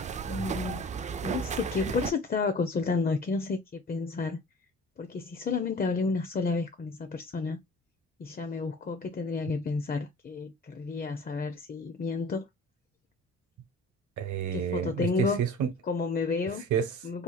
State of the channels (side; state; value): both; normal; correlation 0.43